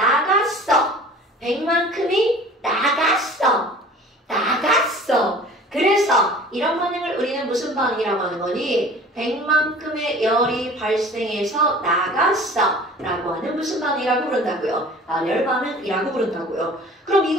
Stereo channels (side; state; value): both; normal; correlation 0.45